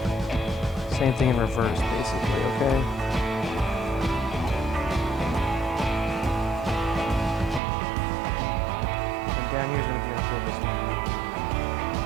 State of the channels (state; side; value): drops out; left; at 7.6 s